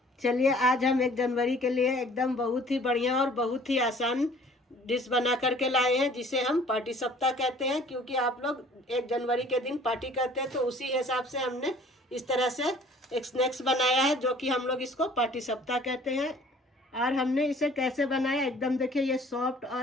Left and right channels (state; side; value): normal; both; correlation 0.53